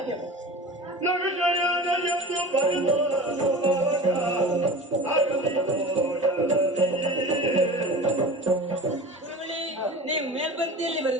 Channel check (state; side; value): normal; both; correlation 0.35